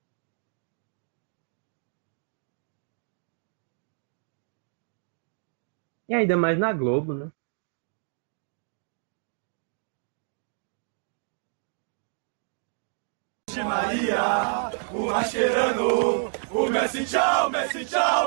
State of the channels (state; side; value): silent; left; 59 dB below the other